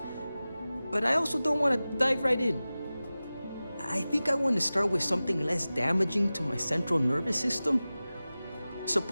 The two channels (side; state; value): both; inverted; correlation -0.96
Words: But I also don't want to dive right in. I think I want to start with something less damaging to my central nervous system.